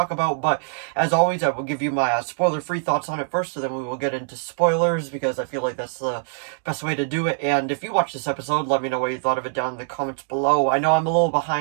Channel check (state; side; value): silent; left; digital silence